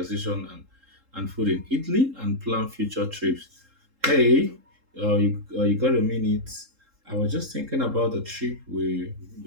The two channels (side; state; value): left; late; 3.7 ms